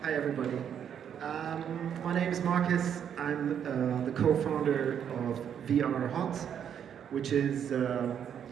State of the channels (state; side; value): quieter; left; 8.6 dB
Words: Hi, everybody. My name is Marcus. I'm the co-founder of VR Hot, which is,